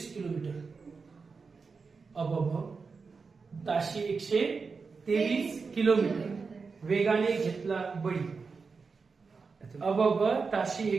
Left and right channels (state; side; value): quieter; left; 4.8 dB